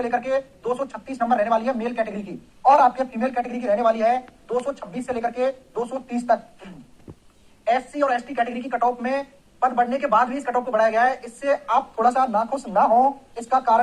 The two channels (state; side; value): identical; both; correlation 1.00